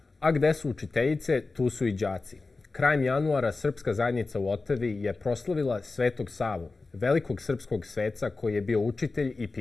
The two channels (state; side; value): quieter; right; 3.7 dB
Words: A gde su učiteljice, tu su i đaci. Krajem januara srpska zajednica u Otavi je proslavila Svetog Savu, velikog srpskog sveca koji je bio učitelj i